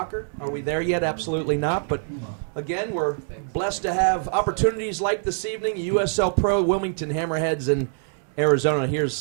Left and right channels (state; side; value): silent; left; digital silence